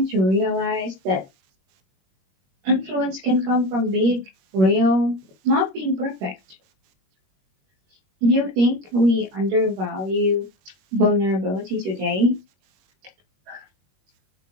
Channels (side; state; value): left; late; 21 ms